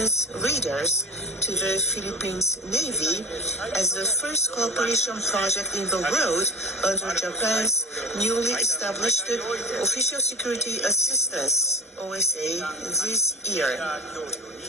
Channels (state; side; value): normal; both; correlation 0.32